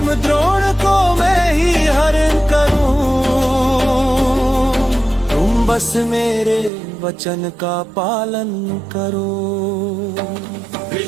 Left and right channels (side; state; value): left; drops out; at 6.7 s